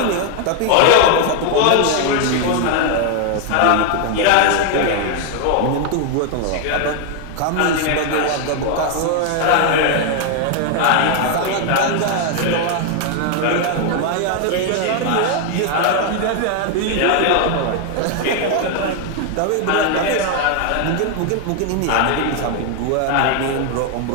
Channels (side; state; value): both; different; correlation 0.00